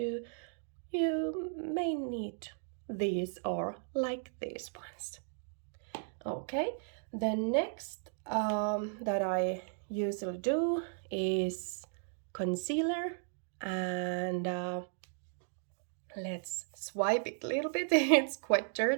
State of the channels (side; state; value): left; silent; digital silence